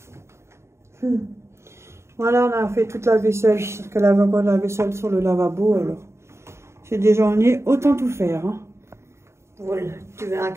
Voilà, on a fait toute la vaisselle. Parce qu'elle avait encore de la vaisselle sur le lavabo, alors. J'ai déjà journées, autant tout faire. Hein. Voilà. Tu veux un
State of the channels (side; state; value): left; late; 0.13 ms